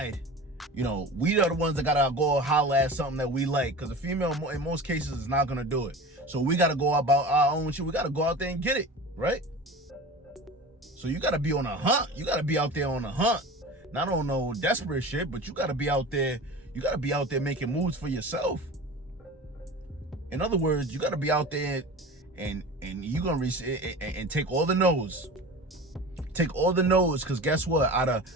You know, we are the ones that gotta go holler at something that we like, because a female in most cases is not gonna do it. So we gotta go about our own shit. We gotta go out there and get it, right? So you gotta be on a hunt. You gotta be out there on a hunt. Not on no desperate shit, but you gotta be out there. You gotta be out there making moves for yourself. In other words, you gotta be out there and you gonna and take all the no's. Take all the no's, because guess what? Out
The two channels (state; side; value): normal; both; correlation 0.35